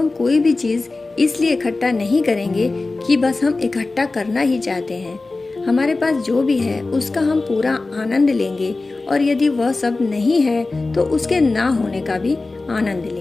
कोई भी चीज़ इसलिए इकट्ठा नहीं करेंगे कि बस हम इकट्ठा करना ही चाहते हैं। हमारे पास जो भी है उसका हम पूरा आनंद लेंगे, और यदि वह सब नहीं है तो उसके ना होने का भी आनंद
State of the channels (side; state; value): right; quieter; 3.4 dB